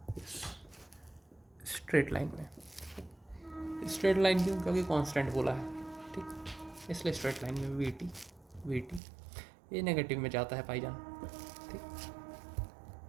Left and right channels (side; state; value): left; drops out; at 9.0 s